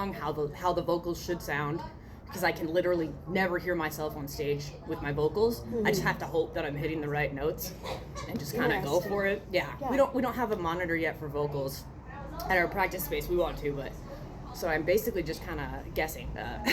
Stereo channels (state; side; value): identical; both; correlation 1.00